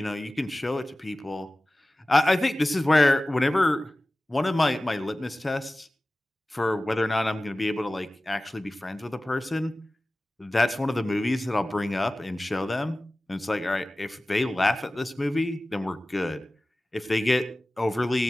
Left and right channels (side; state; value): both; normal; correlation 0.96